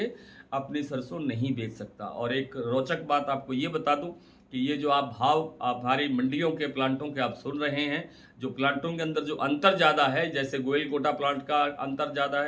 अपनी सरसों नहीं बेच सकता। और एक रोचक बात आपको ये बता दूं कि ये जो आप हमारी मंडियों के प्लांटों के आप सुन रहे हैं, जो प्लांटों के अंदर जो अंतर ज़्यादा है, जैसे गोइलकोटा प्लांट का अंतर ज़्यादा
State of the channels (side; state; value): both; identical; correlation 1.00